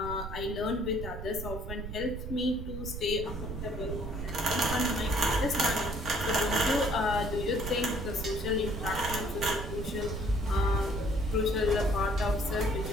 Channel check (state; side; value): noise; right; rumble, 7 dB below the sound